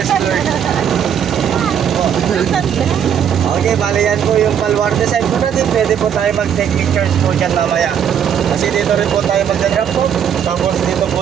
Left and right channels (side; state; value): left; quieter; 8.6 dB